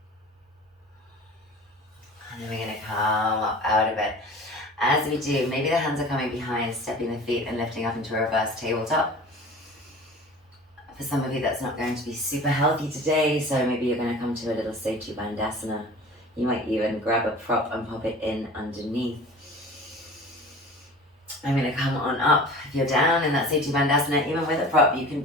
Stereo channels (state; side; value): normal; both; correlation 0.41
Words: And then we're going to come up out of it. As we do, maybe the hands are coming behind, stepping the feet and lifting up into a reverse tabletop. For some of you, that's not going to be super healthy today, so maybe you're going to come to a little Setu Bandhasana. You might even grab a prop and pop it in underneath. I'm going to come on up. If you're down in that Setu Bandhasana, even with a prop, you can